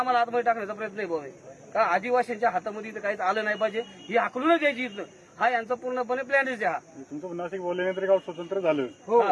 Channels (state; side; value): identical; both; correlation 1.00